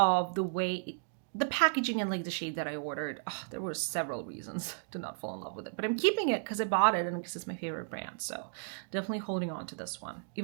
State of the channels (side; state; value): left; silent; digital silence